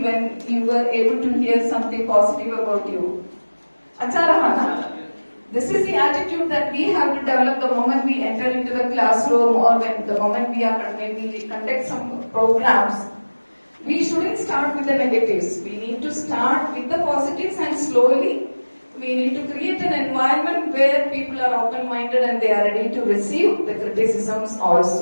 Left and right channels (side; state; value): both; inverted; correlation -1.00